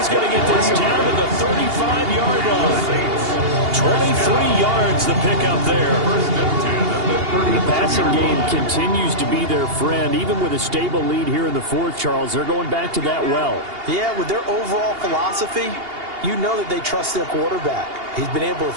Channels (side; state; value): left; late; 2.8 ms